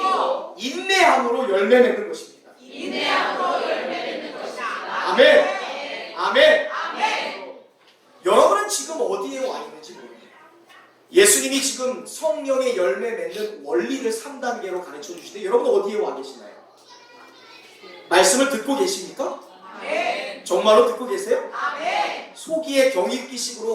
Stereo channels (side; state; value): both; identical; correlation 1.00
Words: 인내함으로 열매 맺는 것입니다. 아멘. 아멘. 여러분은 지금 어디에 와 있는지 모릅니다. 예수님이 지금 성령의 열매 맺는 원리를 3단계로 가르쳐 주시는데 여러분 어디에 와 계시나요? 말씀을 듣고 계십니까? 정말로 듣고 계세요? 소기의